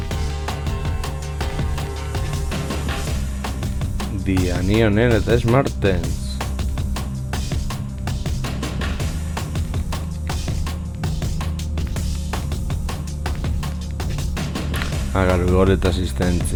Diani honen eta Smartens. Gol eta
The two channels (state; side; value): identical; both; correlation 1.00